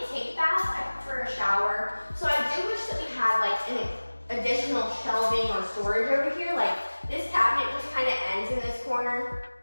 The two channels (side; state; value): both; inverted; correlation -1.00